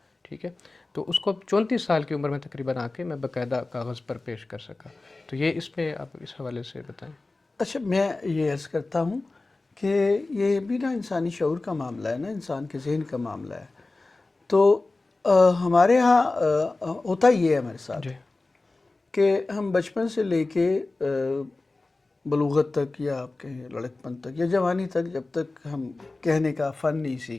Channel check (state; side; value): quieter; right; 3.3 dB